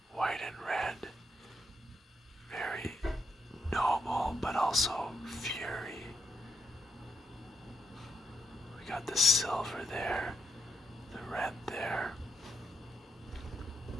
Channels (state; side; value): normal; both; correlation 0.80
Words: White and red. Very noble, but also fury. We got the silver there, the red there.